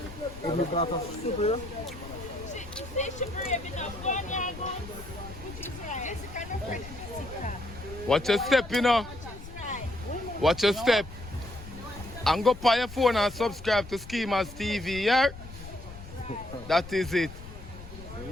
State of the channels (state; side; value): noise; left; rumble, 14 dB below the sound